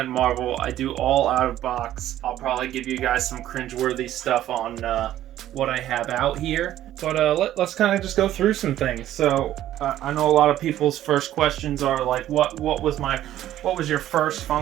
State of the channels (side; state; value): left; quieter; 12.8 dB